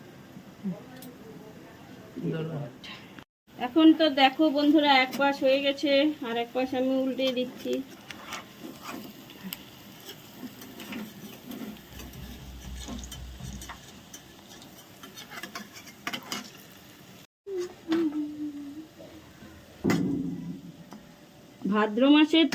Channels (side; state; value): both; identical; correlation 1.00